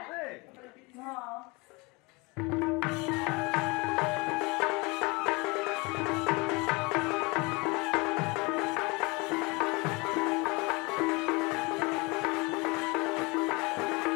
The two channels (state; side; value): quieter; right; 26.6 dB